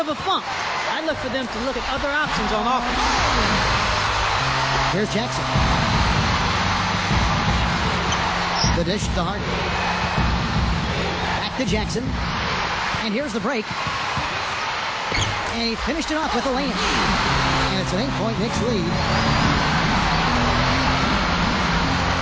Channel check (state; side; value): identical; both; correlation 1.00